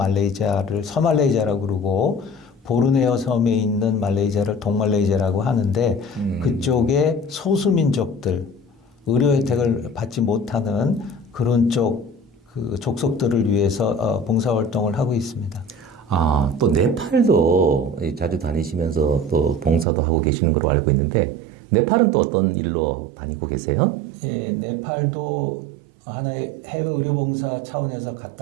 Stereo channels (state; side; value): drops out; left; at 19.9 s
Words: 서말레이시아라고 그러고 보르네오 섬에 있는 말레이시아를 동말레이시아라고 하는데 그쪽에 소수민족들 의료 혜택을 받지 못하는 그런 그 족속들을 위해서 봉사활동을 하고 있습니다. 또 네팔도 자주 다니시면서 또 봉사도 하고 계시는 걸로 알고 있는데 네팔은 또 어떤 일로 다니고 계세요? 예, 네팔도 하나의 해외 의료봉사 차원에서